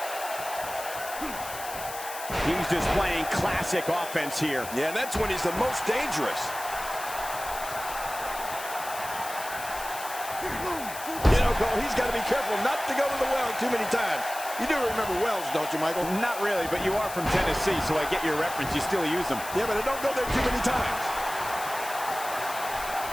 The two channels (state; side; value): noise; left; hiss, 11 dB below the sound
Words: He's displaying classic offense here. Yeah, and that's when he's the most dangerous. You know, Cole, he's got to be careful not to go to the well too many times. You do remember wells, don't you, Michael? Not really, but you are from Tennessee, so I get your reference. You still use them. Yeah, but I don't go there too many times.